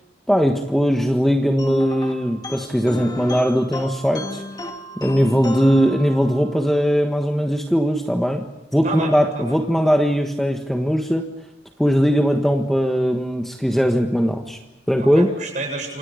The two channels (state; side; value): normal; both; correlation 0.93